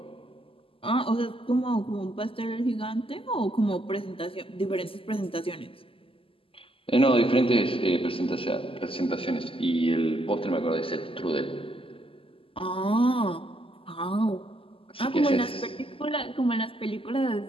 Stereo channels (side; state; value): right; late; 0.26 ms